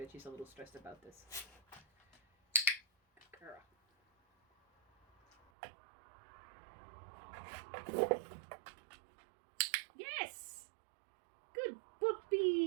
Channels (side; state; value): left; drops out; at 5.4 s